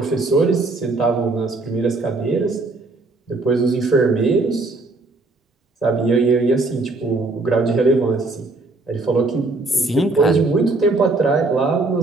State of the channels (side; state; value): left; quieter; 3.3 dB